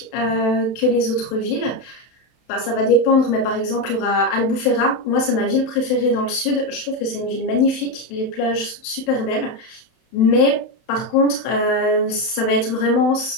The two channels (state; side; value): late; right; 31 ms